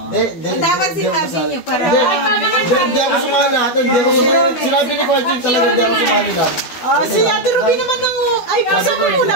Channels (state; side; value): late; right; 12 ms